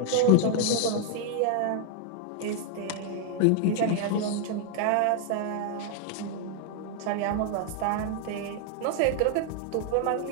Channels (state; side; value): different; both; correlation 0.00